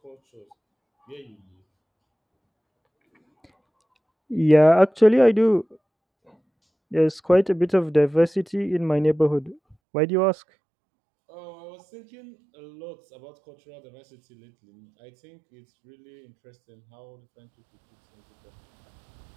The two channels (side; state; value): left; drops out; at 9.8 s